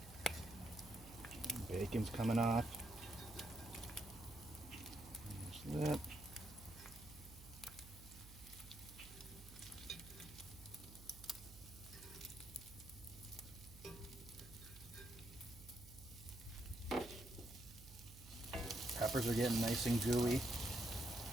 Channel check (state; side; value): noise; right; hum, 16 dB below the sound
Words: Bacon's coming off. There's that. Peppers are getting nice and gooey.